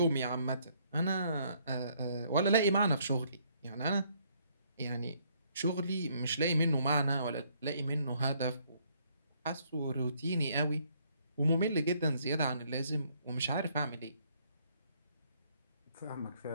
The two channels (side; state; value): both; inverted; correlation -0.67